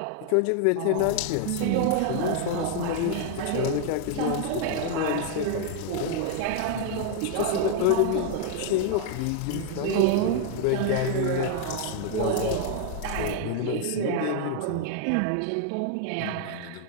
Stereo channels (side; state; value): both; different; correlation 0.00